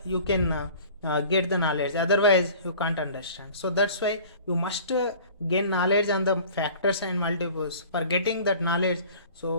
you can get the knowledge. Otherwise you can't understand. So that's why you must gain knowledge on the factors and multiples. For getting that knowledge,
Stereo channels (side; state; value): both; inverted; correlation -0.45